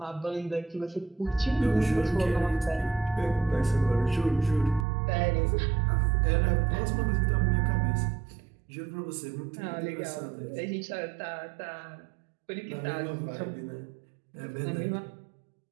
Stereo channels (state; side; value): drops out; left; at 4.9 s